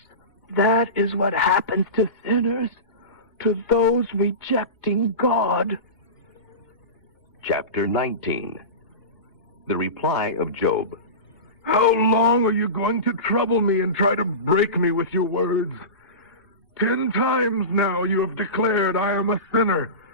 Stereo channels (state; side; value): late; right; 2.8 ms